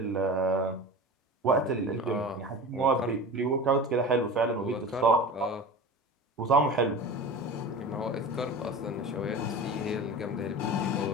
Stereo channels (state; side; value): normal; both; correlation 0.33